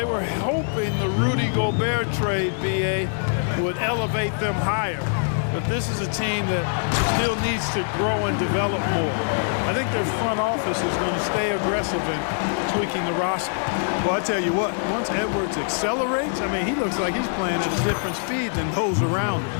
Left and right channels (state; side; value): silent; right; 63 dB below the other